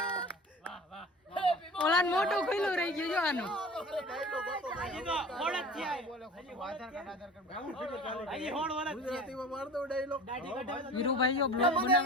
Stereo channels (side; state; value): both; normal; correlation 0.40